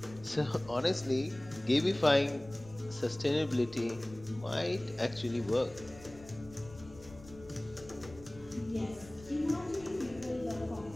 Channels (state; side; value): noise; left; rumble, 19 dB below the sound